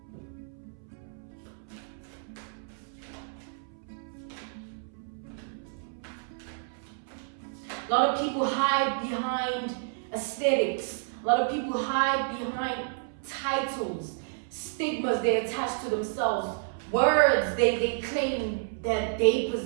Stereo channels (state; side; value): silent; left; 58 dB below the other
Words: A lot of people hide behind aesthetics. A lot of people hide behind titles, stigmas they attach to themselves, words they claim that they